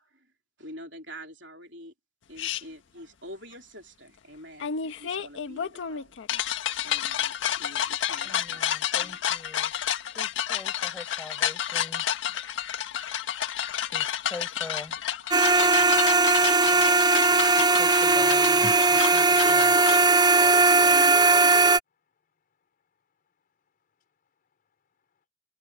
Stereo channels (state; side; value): normal; both; correlation -0.13